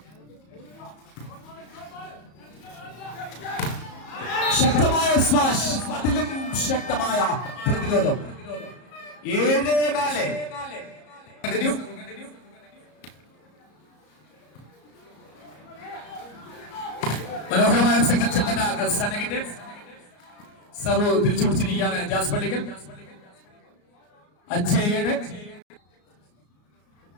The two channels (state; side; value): late; right; 34 ms